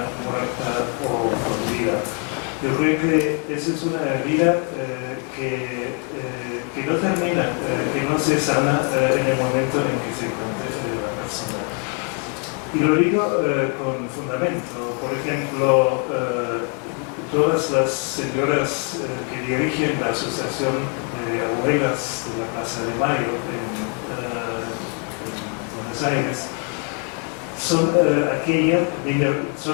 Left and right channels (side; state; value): right; quieter; 39.1 dB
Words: muerta o con vida. Yo creo que esa es una herida que no termina, que no se sana en el momento en que se encuentre la persona. Y lo digo con fundamento. Por ejemplo, todas las señoras que dirigen la Asociación de Abuelas de la Plaza de Mayo en Buenos Aires son de aquella